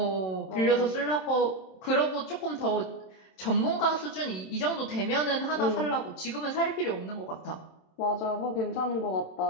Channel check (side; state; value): right; late; 27 ms